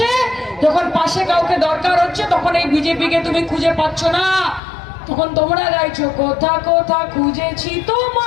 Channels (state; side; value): drops out; right; at 4.6 s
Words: যখন পাশে কাউকে দরকার হচ্ছে, তখন এই বিজেপিকে তুমি খুঁজে পাচ্ছ না, তখন তোমরা গাইছো কোথা কোথা খুঁজেছি